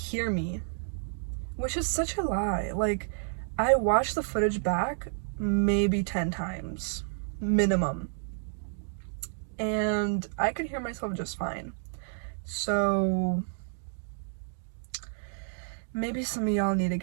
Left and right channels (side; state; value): left; silent; digital silence